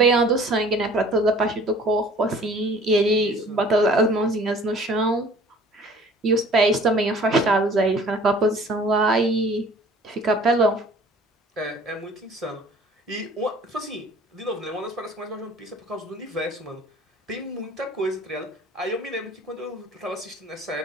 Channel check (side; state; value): both; normal; correlation 0.50